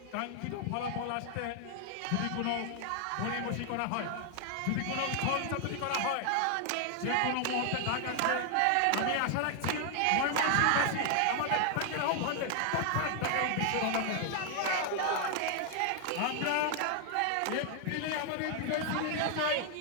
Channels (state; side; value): different; both; correlation 0.00